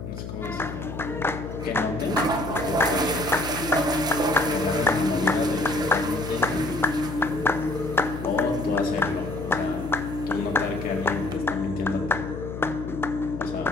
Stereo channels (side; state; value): left; noise; hum, 8 dB below the sound